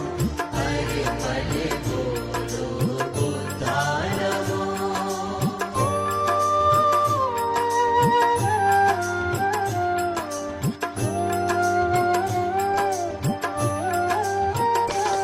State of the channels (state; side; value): identical; both; correlation 1.00